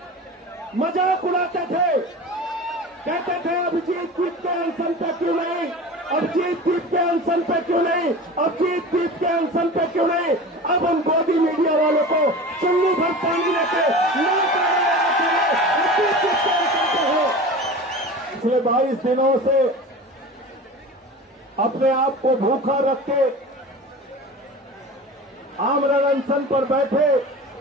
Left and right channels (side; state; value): both; normal; correlation 0.34